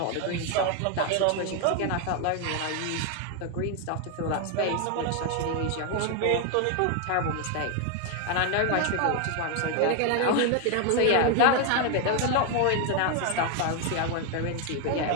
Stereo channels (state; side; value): different; both; correlation 0.01